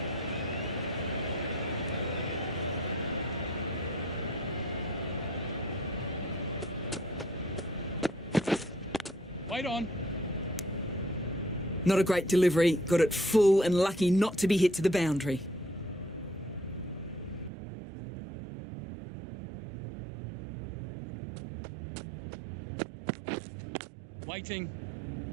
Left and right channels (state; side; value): drops out; left; at 17.5 s